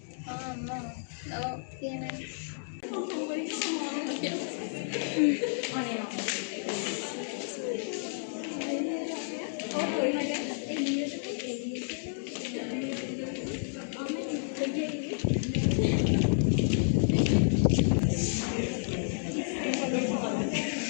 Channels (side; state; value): right; silent; digital silence